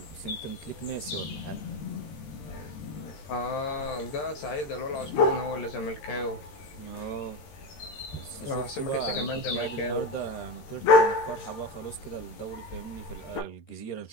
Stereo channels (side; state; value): right; late; 13 ms